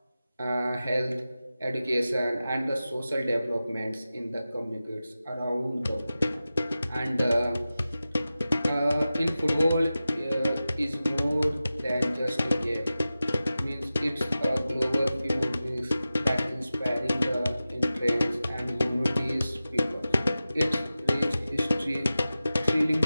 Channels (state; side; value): inverted; both; correlation -0.95